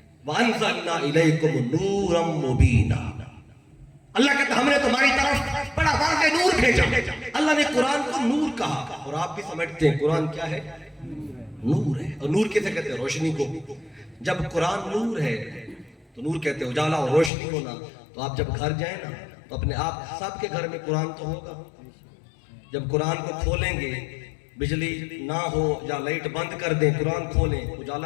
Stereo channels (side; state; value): right; drops out; at 17.3 s